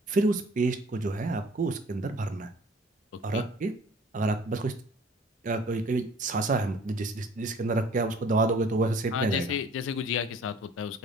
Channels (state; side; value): normal; both; correlation 0.51